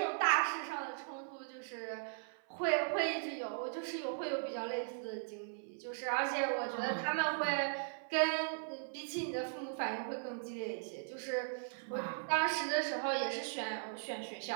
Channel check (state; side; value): silent; left; 52 dB below the other